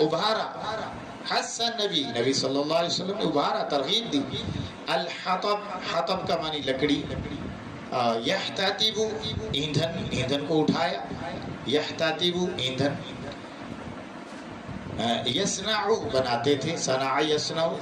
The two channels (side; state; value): both; identical; correlation 1.00